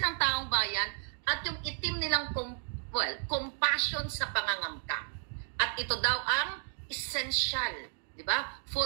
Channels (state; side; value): silent; left; 56 dB below the other